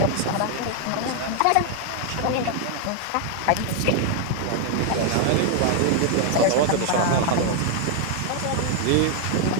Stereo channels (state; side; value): different; both; correlation 0.00